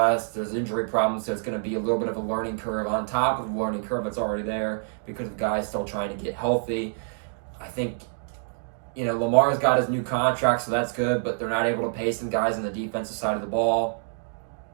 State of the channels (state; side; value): silent; left; digital silence